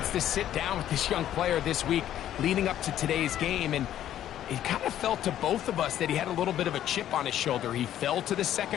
to sit down with this young player this week leading up to today's game, and it kind of felt to both of us that he had a little bit of a chip on his shoulder. He fell to the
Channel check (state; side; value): quieter; right; 11.6 dB